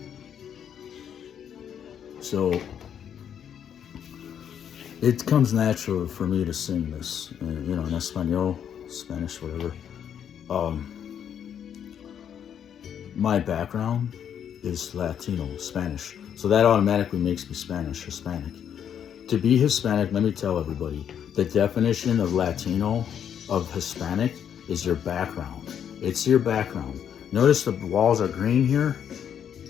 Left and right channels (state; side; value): quieter; right; 8.8 dB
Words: So, it comes natural for me to sing this, in Espanol, Spanish, whatever. My background is Latino, Spanish. So that automatically makes me Hispanic. To be Hispanic, let me tell everybody, the definition of Latino, of Hispanic, is your background. It's your background. Notice the walls are green here?